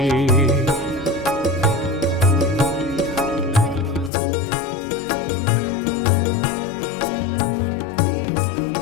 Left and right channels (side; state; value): right; drops out; at 4.1 s